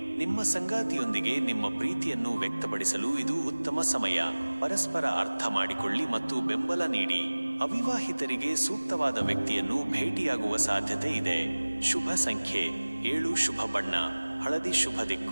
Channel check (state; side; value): inverted; both; correlation -1.00